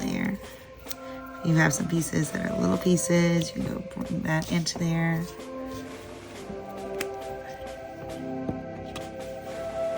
If you have some pieces that are little pieces, you can go bring that into there.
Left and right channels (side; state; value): both; identical; correlation 1.00